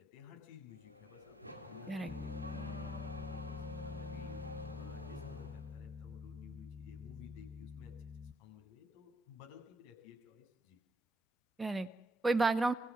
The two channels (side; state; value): both; normal; correlation 0.77